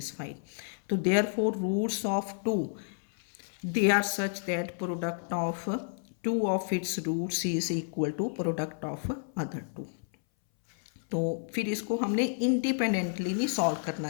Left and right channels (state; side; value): silent; right; 57 dB below the other